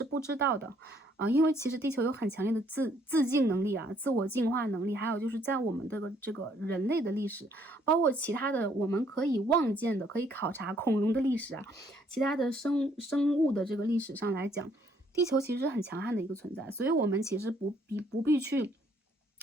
不知道的啊，因为其实地球有很强烈的自净能力啊，自我净化能力，还有就是在我们这个人类的历史，包括其他的我们可以望见的、可以考察恐龙的历史啊，其他的生物的这个历史上来讲，地球其实是很强悍的一个存在，所以我们其实不必去。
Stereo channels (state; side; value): normal; both; correlation 0.66